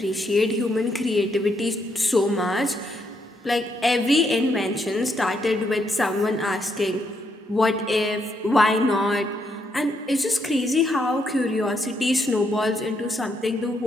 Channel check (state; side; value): normal; both; correlation 0.76